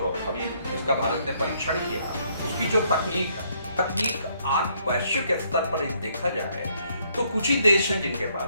अभी इसका भारत ने परीक्षण किया, उसकी जो तकनीक आज वैश्विक स्तर पर देखा जाए तो कुछ ही देश हैं जिनके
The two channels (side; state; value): both; inverted; correlation -0.69